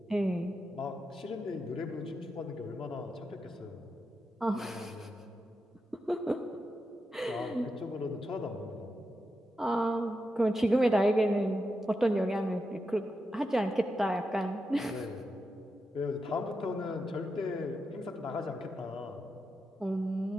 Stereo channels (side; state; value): both; normal; correlation 0.87